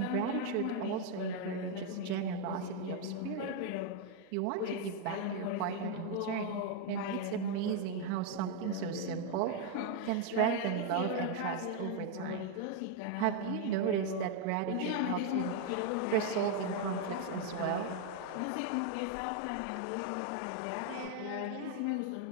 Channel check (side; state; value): both; different; correlation 0.01